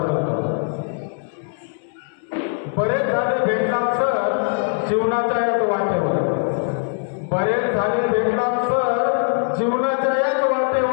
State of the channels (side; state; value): right; silent; 63 dB below the other